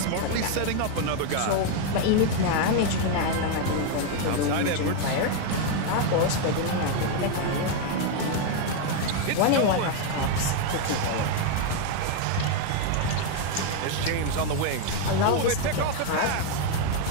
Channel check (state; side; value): different; both; correlation 0.01